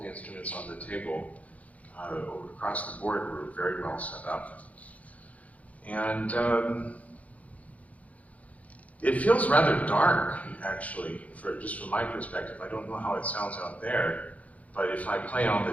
the instruments on the table across the board were very well set up. And it feels rather dark, actually, just from my perspective. I don't know how it sounds out there, but if I play on the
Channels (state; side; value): late; right; 0.069 ms